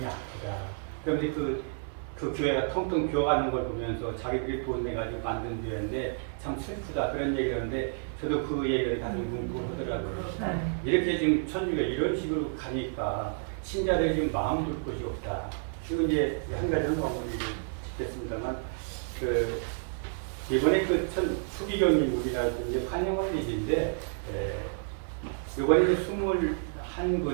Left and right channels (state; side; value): silent; left; 58 dB below the other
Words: 그런데 그 교회가 텅텅 비어가는 걸 보면서 자기들이 돈 내가지고 만든 교회인데 참 슬프다. 그런 얘기를 하는데 저도 그 얘기를 가슴 뭉고 하더라고요. 이렇게 지금 천주가 이런 식으로 가니까 신자들이 지금 마음 둘 곳이 없다. 지금 이제 한 가지는 마무리를 짓겠습니다만 이번에 수기경님 우리나라 이제 환영할 일인데 이번에